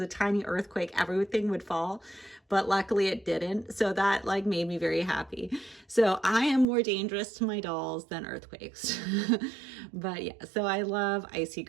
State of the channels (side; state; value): left; drops out; at 6.7 s